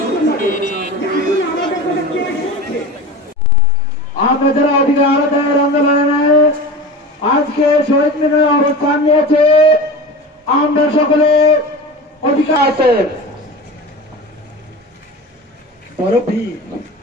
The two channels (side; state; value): both; normal; correlation 0.32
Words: আমরা যারা অধিকার আদায়ের আন্দোলনে আজকে শহীদ মিনারে অবস্থান নিয়েছে, আমরা সকলে অধিকার আছে। বড় ভিড়,